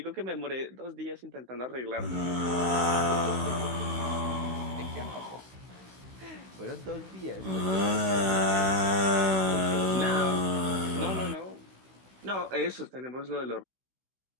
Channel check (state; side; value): late; left; 16 ms